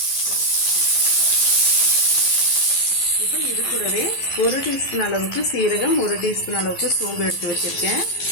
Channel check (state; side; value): late; right; 11 ms